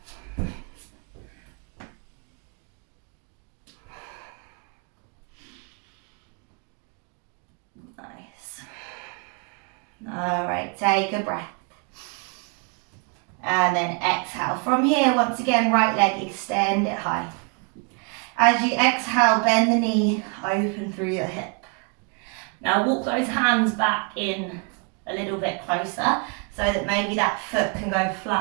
Nice. All right, take a breath. And then exhale. From here, once again, right leg, extend it high. As you exhale, bend the knee, open through your hip. Now walk those hands back in a little bit closer so that maybe that foot can go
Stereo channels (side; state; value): left; quieter; 35.7 dB